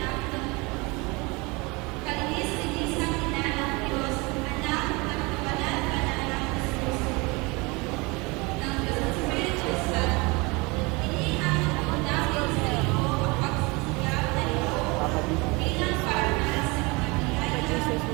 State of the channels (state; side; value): quieter; left; 26.2 dB